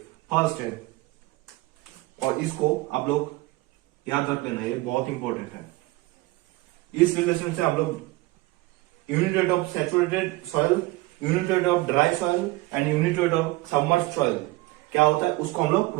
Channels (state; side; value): quieter; left; 20.4 dB